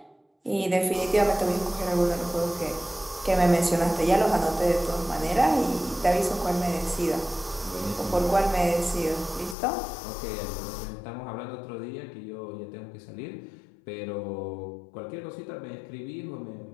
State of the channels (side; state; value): right; drops out; at 9.6 s